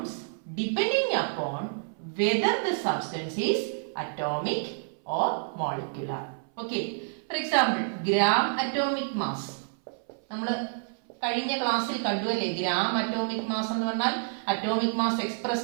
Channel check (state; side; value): silent; left; 58 dB below the other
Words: depending upon whether the substance is atomic or molecular. Okay, for example, gram atomic mass നമ്മൾ കഴിഞ്ഞ ക്ലാസ്സിൽ കണ്ടുവല്ലേ? Gram atomic mass എന്ന് പറഞ്ഞാൽ atomic mass